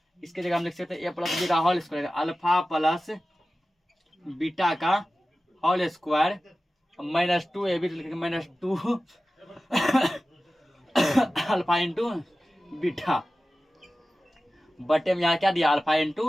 इसके जगह हम लिख सकते हैं ए प्लस बी का whole square, alpha plus beta का whole square minus 2ab, minus 2 alpha into beta बटे में यहाँ क्या दिया अल्फा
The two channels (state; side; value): normal; both; correlation 0.95